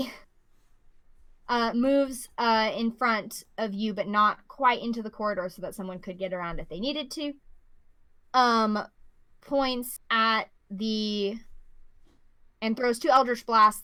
moves in front of you, but not quite into the corridor so that someone could get around if they needed to. Points at and throws 2 Eldritch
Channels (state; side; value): identical; both; correlation 1.00